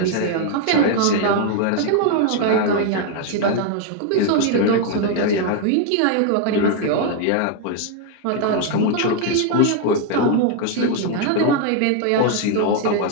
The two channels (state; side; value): different; both; correlation 0.00